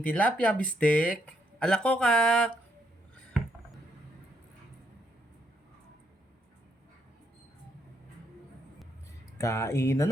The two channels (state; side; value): normal; both; correlation 0.74